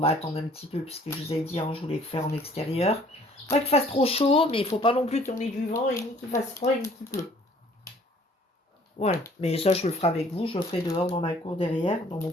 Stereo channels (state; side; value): normal; both; correlation 0.56